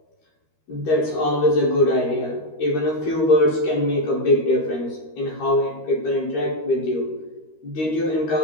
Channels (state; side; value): late; right; 13 ms